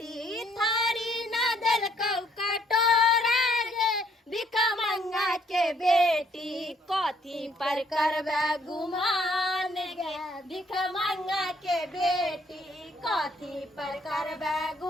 थारी न देलकौ कटोरा गे भिखा मंगा के बेटी कथी पर करबे गुमान गे भिखा मंगा के बेटी कथी पर करबे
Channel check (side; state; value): both; normal; correlation 0.66